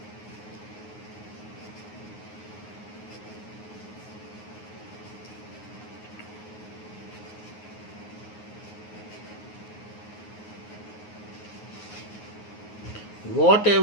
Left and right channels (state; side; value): late; right; 9.5 ms